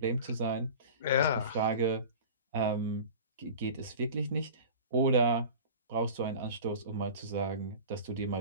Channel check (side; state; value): both; inverted; correlation -0.36